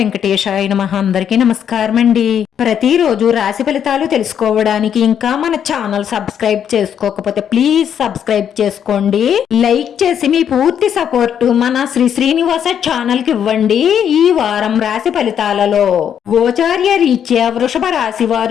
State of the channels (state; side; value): quieter; right; 8.8 dB